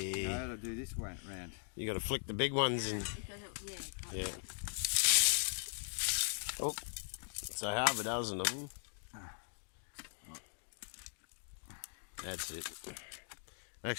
No, I'll do this way round. You got to flick the big ones and... Yeah. Oh, so half a dozen of them. That's it.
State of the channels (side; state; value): right; silent; digital silence